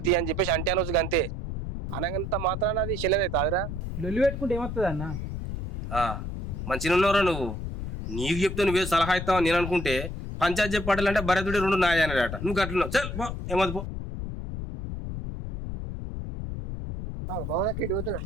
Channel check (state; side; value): noise; left; rumble, 6 dB below the sound